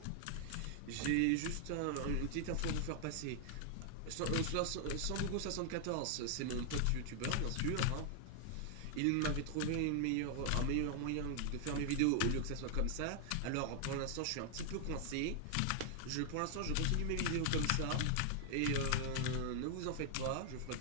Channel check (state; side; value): different; both; correlation -0.01